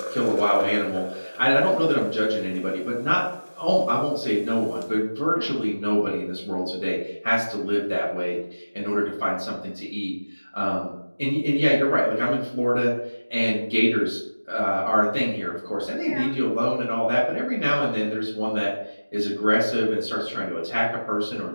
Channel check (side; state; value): both; inverted; correlation -1.00